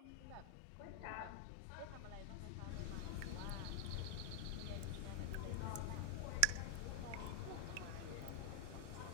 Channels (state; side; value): different; both; correlation 0.00